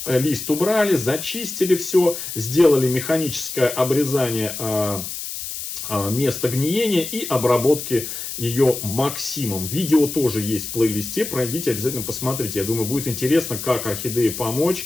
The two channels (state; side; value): noise; left; hiss, 7 dB below the sound